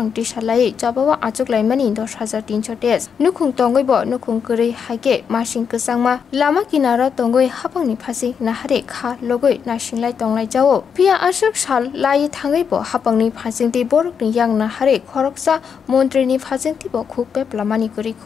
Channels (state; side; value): quieter; right; 6.8 dB